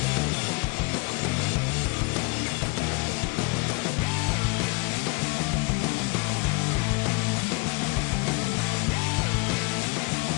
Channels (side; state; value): right; quieter; 29.5 dB